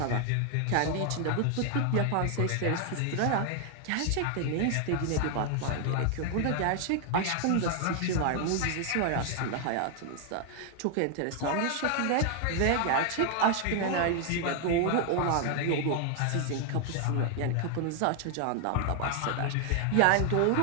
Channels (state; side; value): different; both; correlation 0.00